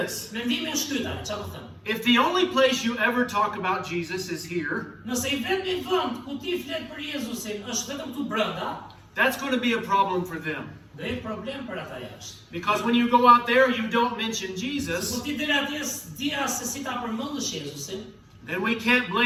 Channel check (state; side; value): identical; both; correlation 1.00